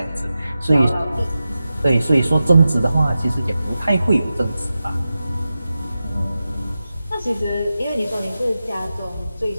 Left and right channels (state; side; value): inverted; both; correlation -0.93